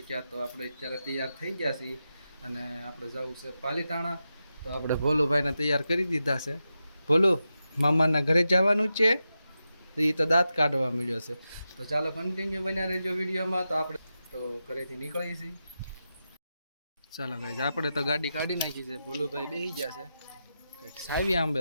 તો આપણે અત્યારે તૈયાર થઈ ગયા છીએ અને આપણે જવું છે પાલીતાણા. તો આપણે ભોલુભાઈને તૈયાર કરી દીધા છે. ભોલુ, મામાના ઘરે જવાનું છે. તો એ તો દાંત કાઢવા મળ્યો છે. તો ચાલો કન્ટિન્યુ બન્યા રહેજો વિડીયોમાં. તો આપણે તો ઘરેથી નીકળીએ છીએ. ચાલો ગાઈસ, આપણે તો ગાડી કાઢી નાખી છે. ભોલુભાઈ બેસી ગયા છે, કંઈક સાવી આંબે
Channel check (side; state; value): both; inverted; correlation -0.89